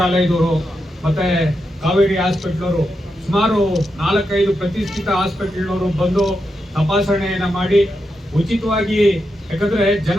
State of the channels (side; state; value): both; normal; correlation 0.86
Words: ಮತ್ತೆ ಕಾವೇರಿ ಹಾಸ್ಪಿಟಲ್ನವರು, ಸುಮಾರು 4-5 ಪ್ರತಿಷ್ಠಿತ ಹಾಸ್ಪಿಟಲ್ನವರು ಬಂದು ತಪಾಸಣೆಯನ್ನ ಮಾಡಿ ಉಚಿತವಾಗಿ, ಯಾಕಂದ್ರೆ